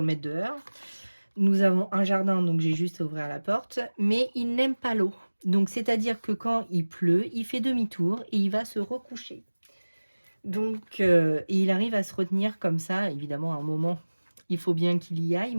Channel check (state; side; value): inverted; both; correlation -1.00